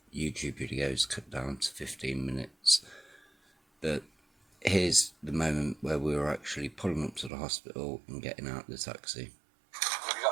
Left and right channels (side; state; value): left; drops out; at 7.3 s